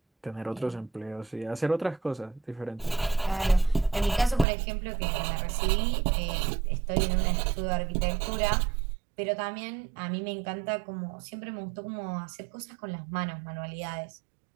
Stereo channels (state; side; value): drops out; left; at 4.5 s